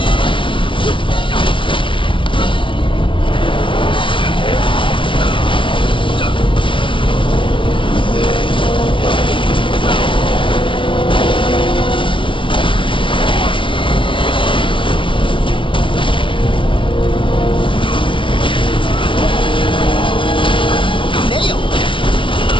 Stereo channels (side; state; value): right; late; 0.25 ms